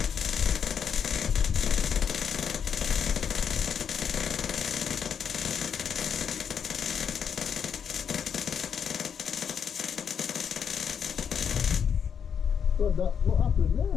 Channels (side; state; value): right; quieter; 7.5 dB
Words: God, what happened